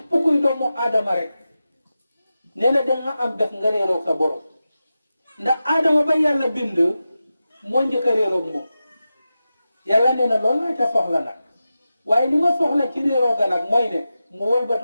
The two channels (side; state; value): both; inverted; correlation -0.92